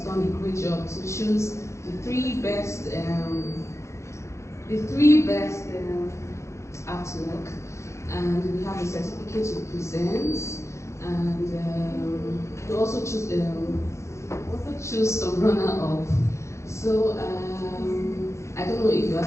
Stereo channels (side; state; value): right; late; 0.14 ms